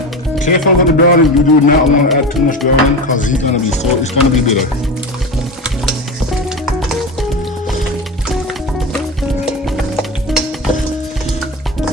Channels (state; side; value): normal; both; correlation 0.24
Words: Careful with the browning. You do not want to add too much browning because it's gonna be bitter.